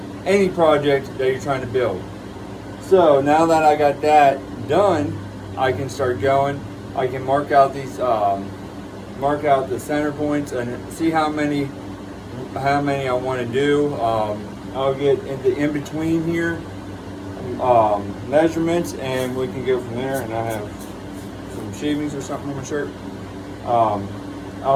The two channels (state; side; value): identical; both; correlation 1.00